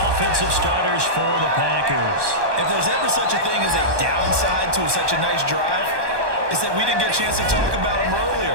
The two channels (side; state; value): left; late; 1.2 ms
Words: offensive starters for the Packers. If there's ever such a thing as a downside to such a nice drive, it's that we didn't get a chance to talk about them earlier.